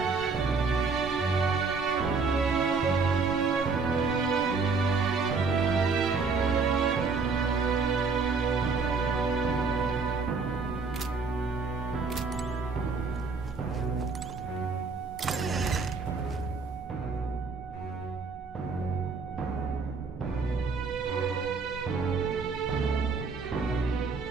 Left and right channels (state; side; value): quieter; left; 4.6 dB